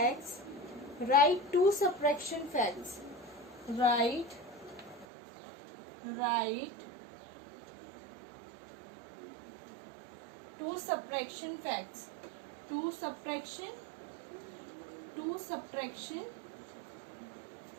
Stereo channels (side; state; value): left; drops out; at 5.1 s